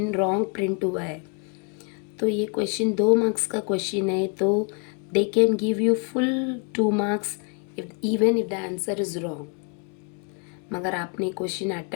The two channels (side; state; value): right; quieter; 37.1 dB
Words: रॉन्ग प्रिंट हुआ है, तो ये क्वेश्चन 2 मार्क्स का क्वेश्चन है तो they can give you full 2 marks even if the answer is wrong. मगर आपने क्वेश्चन